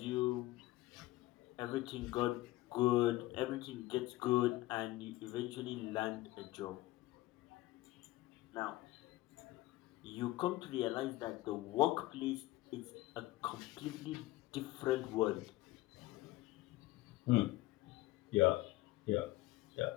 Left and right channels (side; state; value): right; quieter; 18.2 dB